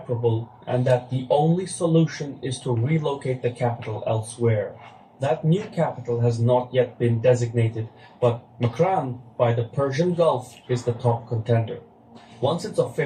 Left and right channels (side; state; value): both; identical; correlation 1.00